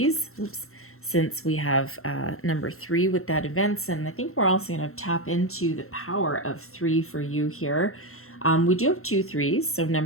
Oops. Since we have number 3 with that events, and I think we're also going to tap into the power of 3 for you here. We do have 2 3s, so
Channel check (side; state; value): right; late; 0.62 ms